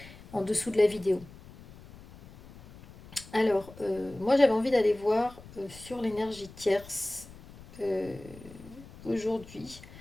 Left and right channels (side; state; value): left; noise; rumble, 19 dB below the sound